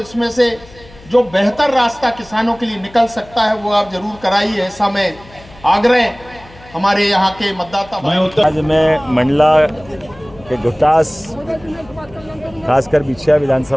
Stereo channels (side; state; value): left; noise; hum, 22 dB below the sound